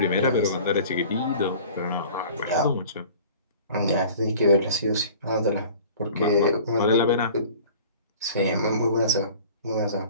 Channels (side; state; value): both; inverted; correlation -0.45